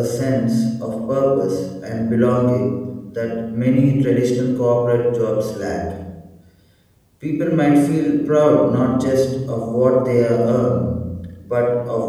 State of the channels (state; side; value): identical; both; correlation 1.00